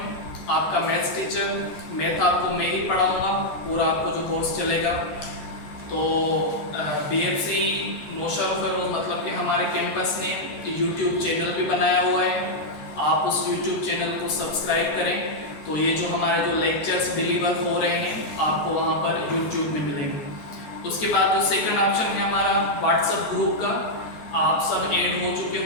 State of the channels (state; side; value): late; right; 13 ms